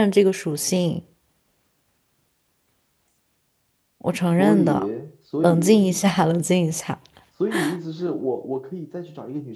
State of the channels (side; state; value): both; identical; correlation 1.00